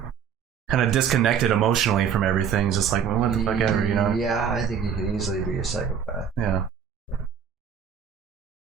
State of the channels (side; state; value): left; quieter; 7.7 dB